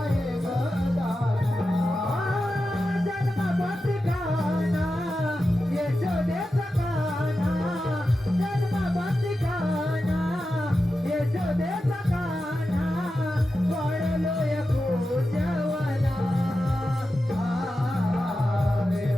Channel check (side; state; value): both; normal; correlation 0.91